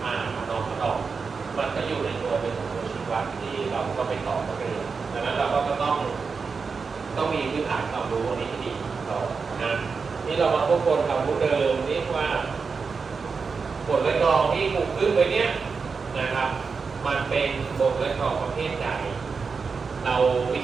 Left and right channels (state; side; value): quieter; left; 5.1 dB